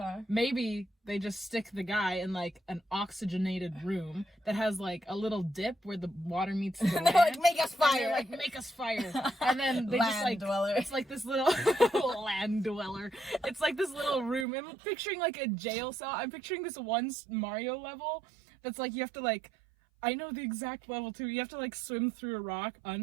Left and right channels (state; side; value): drops out; left; at 14.5 s